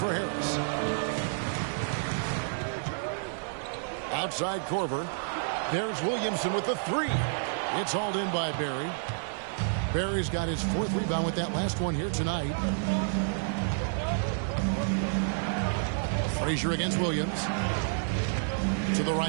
Harris. Outside Korver. There's Williamson with the 3. It's hauled in by Barry. Barry's got his 4th rebound with that last one here tonight. Frazier against Williams. To the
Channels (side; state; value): left; silent; 58 dB below the other